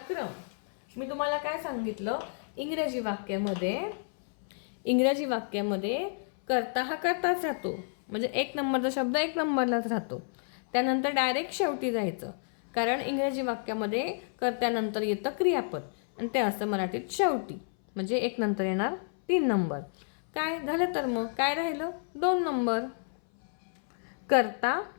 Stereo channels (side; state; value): right; silent; 58 dB below the other